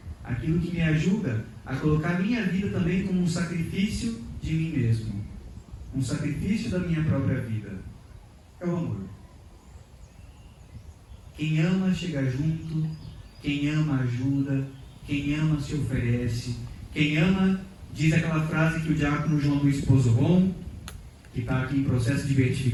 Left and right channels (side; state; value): both; identical; correlation 1.00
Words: Aquilo que me ajuda a colocar minha vida também como um sacrifício de mim mesmo. Um sacrifício da minha própria vida. É o amor. Quem ama chega junto, quem ama ajuda, quem ama se oferece, quem ama diz aquela frase que o diácono João Luiz Pozobon, que está aqui em processo de